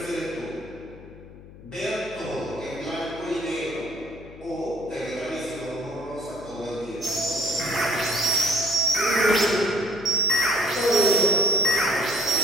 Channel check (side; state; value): left; noise; hum, 18 dB below the sound